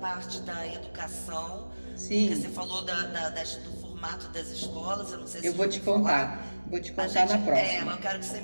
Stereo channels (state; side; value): inverted; both; correlation -1.00